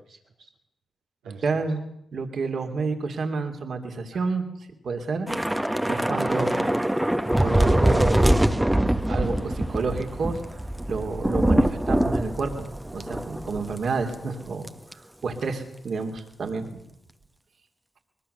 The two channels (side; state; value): both; normal; correlation 0.96